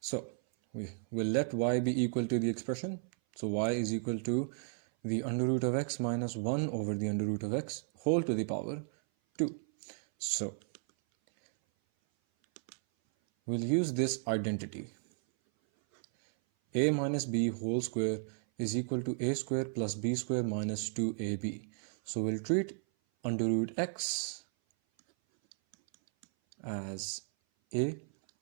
we will let y be equal to the expression. So y is equal to the under root of x minus 1 over the under root of x whole to the power 2. So we'll use this identity. A minus b whole square is equal to a square plus b square minus 2ab. So we'll treat under root x as a,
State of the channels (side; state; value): left; silent; 55 dB below the other